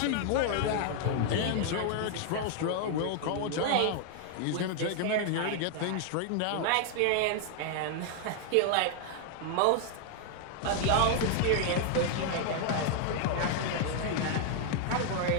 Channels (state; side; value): different; both; correlation 0.00